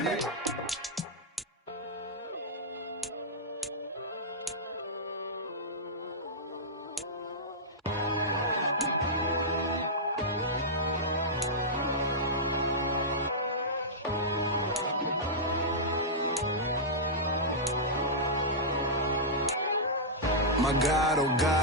My God, oh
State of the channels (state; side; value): normal; both; correlation -0.11